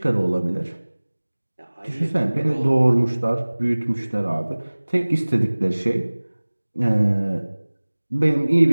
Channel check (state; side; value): inverted; both; correlation -1.00